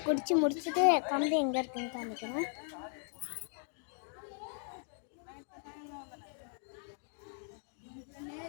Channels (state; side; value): silent; right; 53 dB below the other